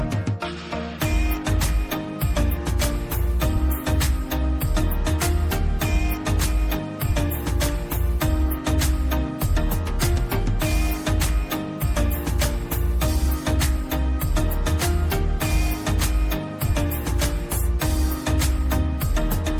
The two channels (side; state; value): both; identical; correlation 1.00